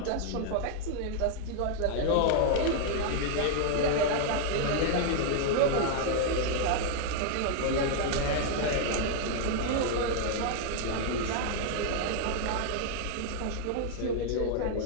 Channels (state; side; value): different; both; correlation 0.00